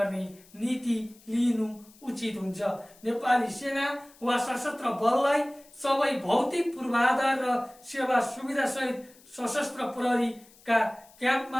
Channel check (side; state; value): left; noise; hiss, 26 dB below the sound